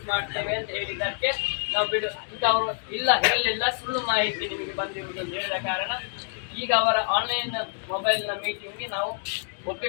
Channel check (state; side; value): silent; right; digital silence